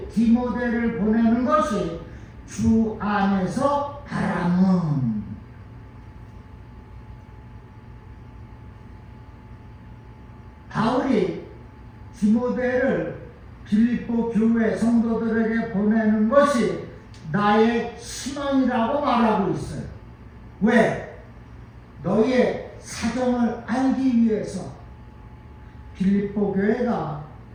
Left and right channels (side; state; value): both; identical; correlation 1.00